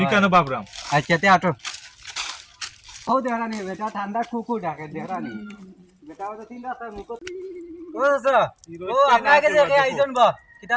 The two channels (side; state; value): both; identical; correlation 1.00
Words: কেন বাবরাম আচ্ছা তে আটো ও দেখানি বেটা ঠান্ডা কুকু ডাকে দেখানি বেটা ও তো 3 রাস্তার মুখো ও স্যার ও আপনাকে দেখে আইজন বা কিতা